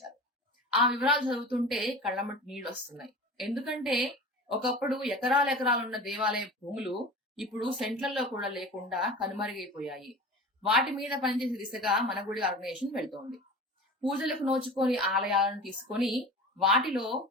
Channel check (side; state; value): both; normal; correlation 0.35